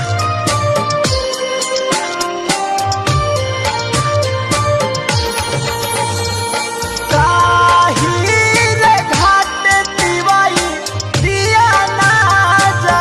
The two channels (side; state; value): both; identical; correlation 1.00